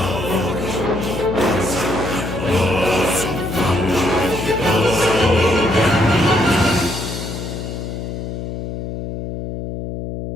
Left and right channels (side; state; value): left; noise; hum, 6 dB below the sound